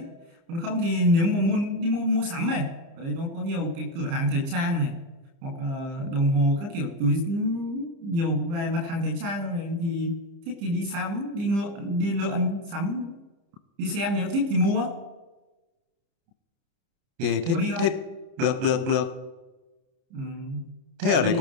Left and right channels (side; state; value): left; late; 30 ms